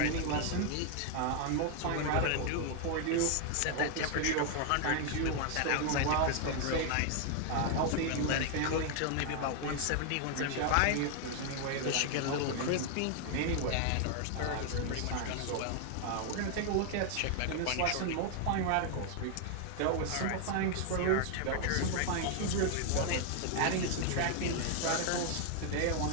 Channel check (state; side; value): different; both; correlation 0.00